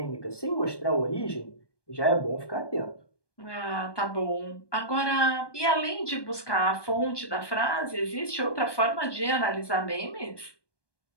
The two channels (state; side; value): late; right; 1.2 ms